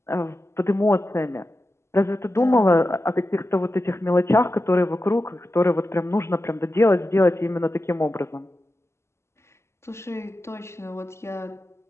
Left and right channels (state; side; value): late; right; 0.13 ms